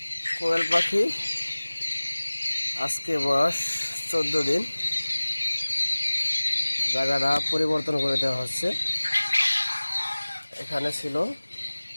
কোয়েল পাখি আজকে বয়স 14 দিন। জায়গাটা পরিবর্তন করে দেওয়া হচ্ছে। এখানে ছিল,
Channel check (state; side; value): inverted; both; correlation -1.00